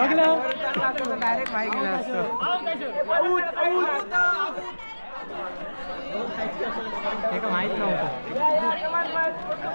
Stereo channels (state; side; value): inverted; both; correlation -1.00